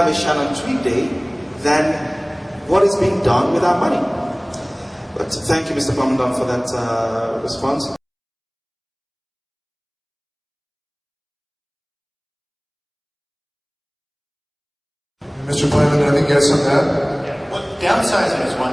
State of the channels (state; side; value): identical; both; correlation 1.00